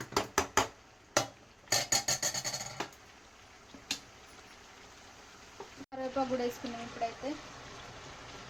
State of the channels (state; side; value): identical; both; correlation 1.00